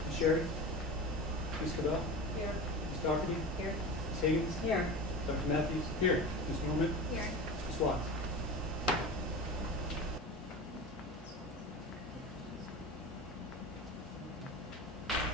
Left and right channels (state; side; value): normal; both; correlation 0.30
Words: Sherry? Ms. Cabell? Here. Ms. Doherty? Here. Ms. Higgins? Here. Dr. Matthews? Here. Ms. Norman? Here. Ms. Watts?